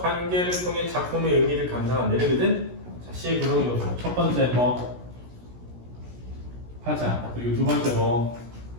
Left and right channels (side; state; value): left; late; 16 ms